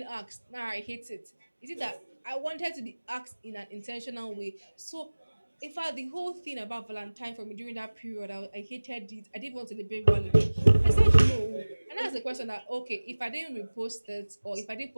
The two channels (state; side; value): inverted; both; correlation -1.00